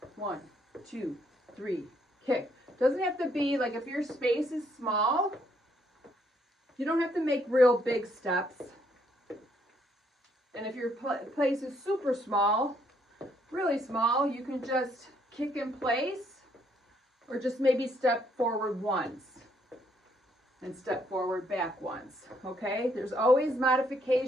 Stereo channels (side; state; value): both; normal; correlation 0.70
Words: 1, 2, 3, kick. Doesn't have to be like, if your space is small, you don't have to make real big steps. And if your place is super small, really small, you can just kick in place or just maybe step forward once and step forward back once, okay? There's always